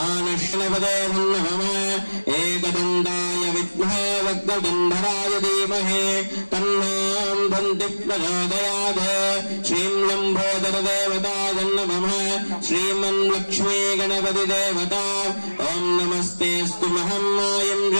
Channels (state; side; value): inverted; both; correlation -1.00